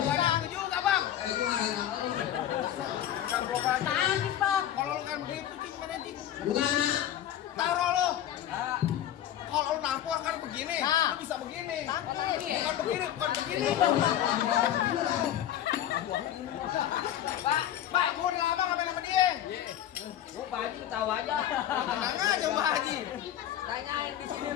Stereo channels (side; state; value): right; quieter; 11.4 dB